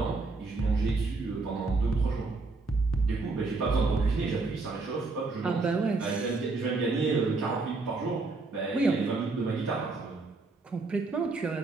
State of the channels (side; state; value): left; quieter; 3.7 dB